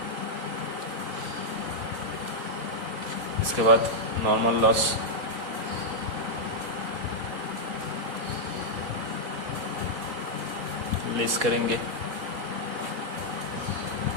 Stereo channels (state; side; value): late; left; 4.1 ms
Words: इसके बाद नॉर्मल लॉस लेस करेंगे